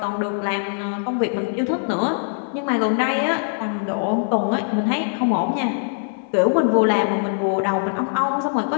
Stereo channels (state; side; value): silent; right; 64 dB below the other